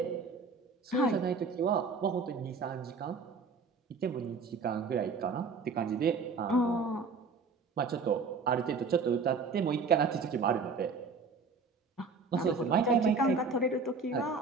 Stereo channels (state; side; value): quieter; left; 4.5 dB